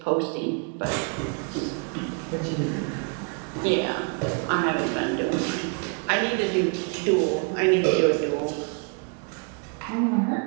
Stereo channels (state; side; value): quieter; left; 38.6 dB